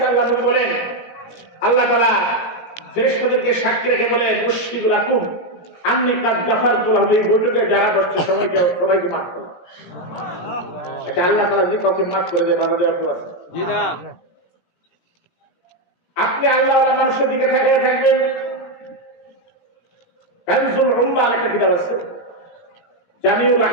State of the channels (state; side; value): late; right; 17 ms